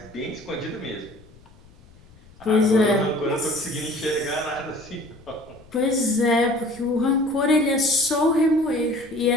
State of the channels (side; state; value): left; noise; rumble, 25 dB below the sound